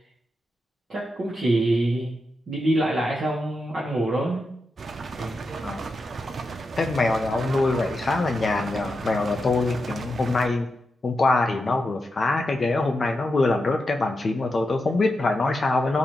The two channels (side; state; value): both; normal; correlation 0.88